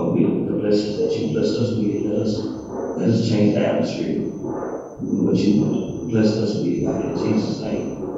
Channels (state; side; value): identical; both; correlation 1.00